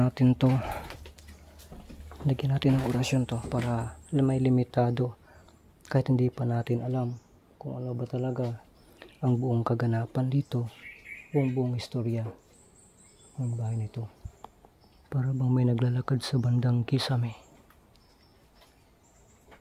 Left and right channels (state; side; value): identical; both; correlation 1.00